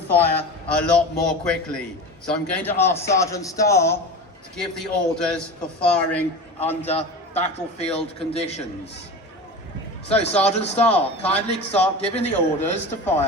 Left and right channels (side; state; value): both; normal; correlation 0.30